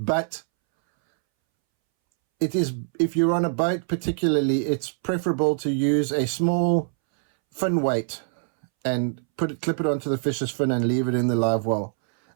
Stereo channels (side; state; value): left; silent; 63 dB below the other